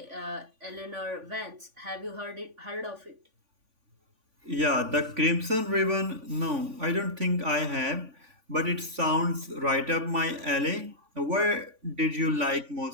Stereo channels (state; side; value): late; left; 3.5 ms